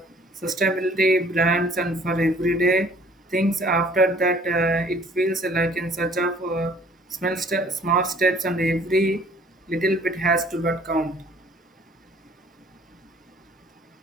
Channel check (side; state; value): both; normal; correlation 0.56